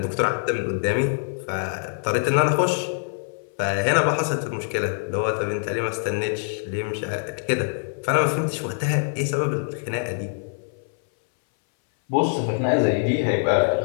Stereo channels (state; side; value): silent; right; 62 dB below the other